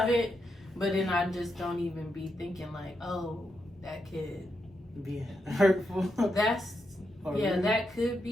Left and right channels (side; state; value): both; normal; correlation 0.83